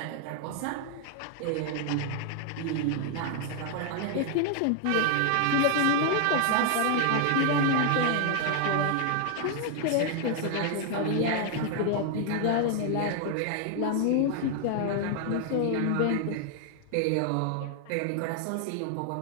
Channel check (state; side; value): different; both; correlation 0.00